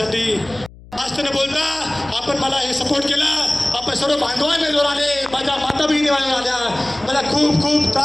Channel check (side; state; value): left; noise; hum, 21 dB below the sound